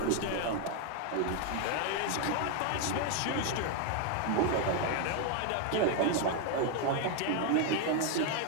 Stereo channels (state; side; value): different; both; correlation 0.01